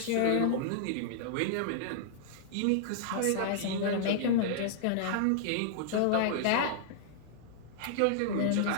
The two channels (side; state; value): both; different; correlation -0.02